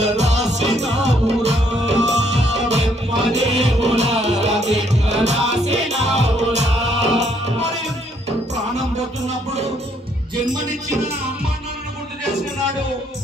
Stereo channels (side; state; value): both; normal; correlation 0.69